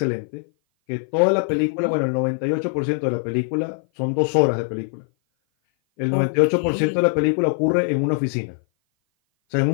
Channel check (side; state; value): right; silent; 57 dB below the other